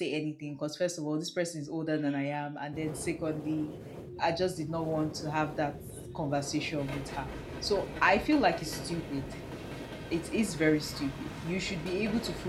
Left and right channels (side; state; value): both; identical; correlation 1.00